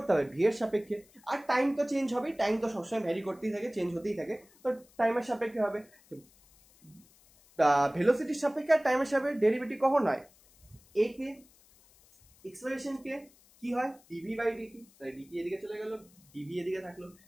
হবে ভি এর সাপেক্ষে। আর টাইম তো চেঞ্জ হবেই, টাইম তো সবসময় ভ্যারি করতেই থাকে, চেঞ্জ হতেই থাকে, তো টাইমের সাপেক্ষে হবে। ভেলোসিটির সাপেক্ষে আর টাইমের সাপেক্ষে ডেরিভেটিভ কখন হয়, এ কে এক্সপ্রেশন কে কি হয় ডিভি বাই ডিটি, তাই ডিটি এদিকে চলে গেল, ডিভি এদিকে থাকলো,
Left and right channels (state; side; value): noise; left; hiss, 28 dB below the sound